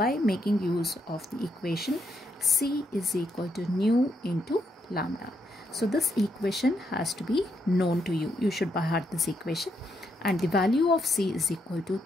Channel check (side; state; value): both; normal; correlation 0.78